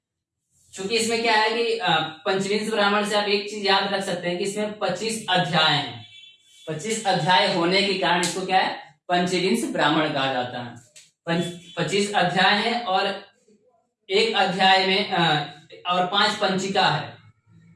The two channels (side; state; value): both; identical; correlation 1.00